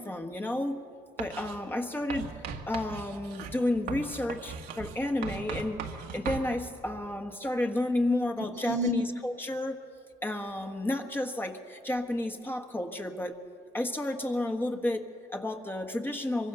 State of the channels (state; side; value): normal; both; correlation 0.81